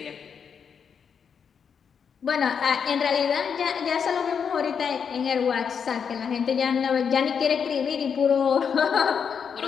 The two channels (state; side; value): quieter; right; 6.8 dB